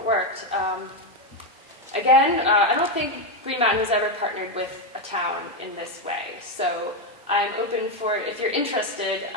worked. Again, I don't think Green Mountain has ever partnered with a town in this way, so I'm open for, if you're interested,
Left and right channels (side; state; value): both; normal; correlation 0.06